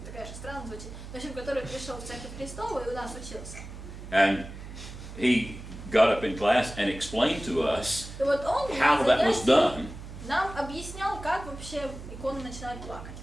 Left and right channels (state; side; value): noise; right; hum, 12 dB below the sound